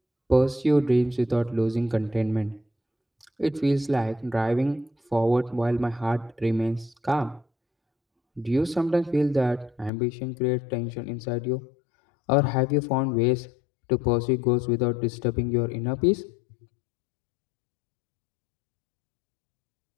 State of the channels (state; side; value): drops out; right; at 9.9 s